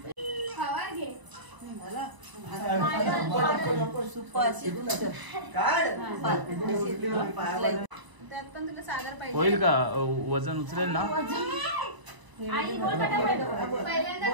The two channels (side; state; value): left; late; 1.0 ms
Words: त्यात पण तुला सागर पाहिजे होईल का वजन उचलेल ना